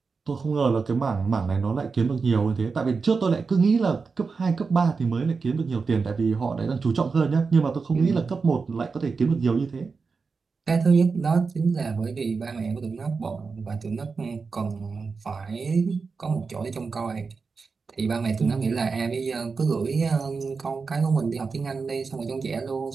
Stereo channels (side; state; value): left; quieter; 4.8 dB